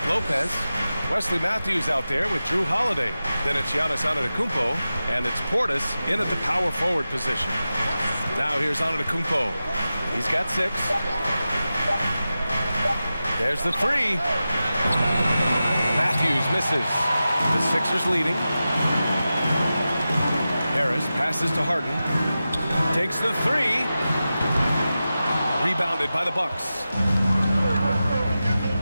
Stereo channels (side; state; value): both; inverted; correlation -0.93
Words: Lopez, Wesley Matthews out there with Drew Holiday. Then it's Giannis Antetokounmpo, and it's Portis in at the power forward position. Now here's Antetokounmpo. He's got 6. There's the 3. Matthews misses. The Sixers leading. Harris passes to Harden. Takes the 3. Rebounded by the Bucks.